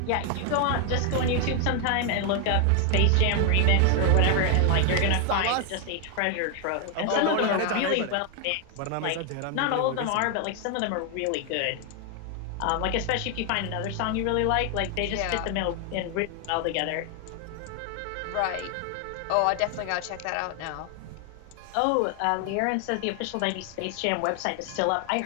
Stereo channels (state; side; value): different; both; correlation 0.00